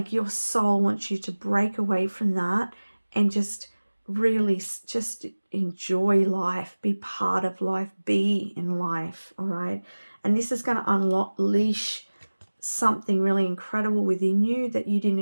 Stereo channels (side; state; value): both; inverted; correlation -1.00